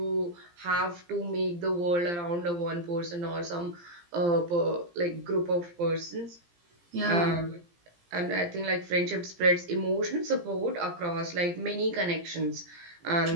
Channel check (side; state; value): left; late; 17 ms